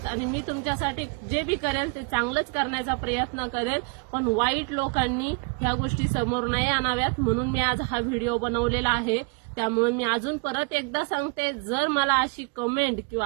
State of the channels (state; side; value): quieter; left; 34.6 dB